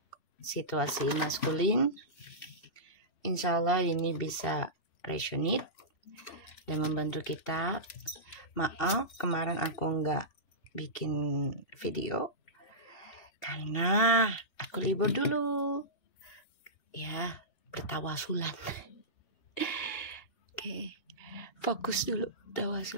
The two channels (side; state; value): right; late; 2.7 ms